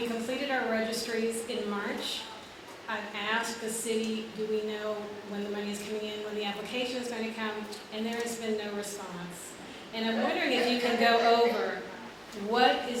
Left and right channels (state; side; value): identical; both; correlation 1.00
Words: completed our registries in March. I've asked the city, do we know when the money is coming in, when the application is going to come, and there has been no response. And I'm wondering if you can go over what